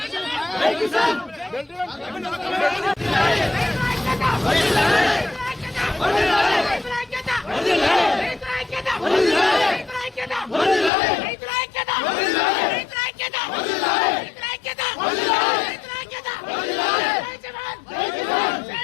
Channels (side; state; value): right; drops out; at 10.9 s